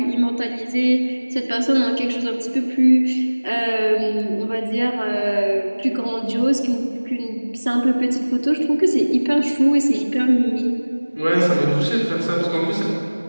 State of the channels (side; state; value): both; inverted; correlation -1.00